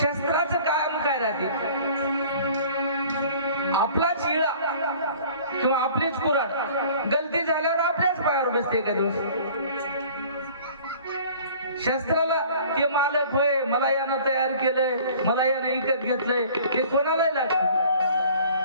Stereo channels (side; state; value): both; inverted; correlation -0.49